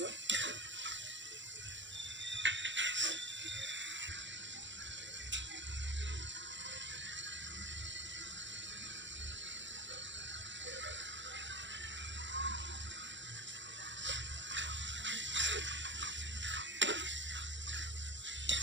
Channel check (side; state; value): left; late; 0.54 ms